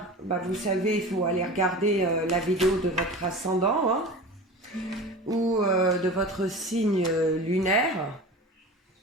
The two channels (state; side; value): normal; both; correlation 0.34